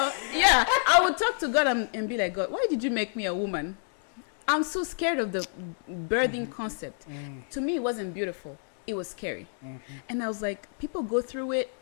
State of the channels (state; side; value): silent; right; digital silence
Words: I would talk to God and be like, God, why did you make me a woman? I'm so scared of the birthing concept. To me, it wasn't beautiful. It was scary. And I was like, people go through it